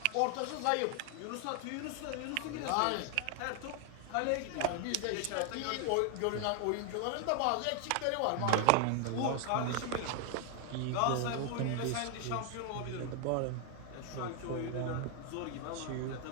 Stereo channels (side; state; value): both; different; correlation 0.00